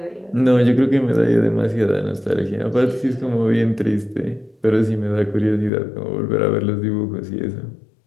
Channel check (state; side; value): drops out; right; at 5.7 s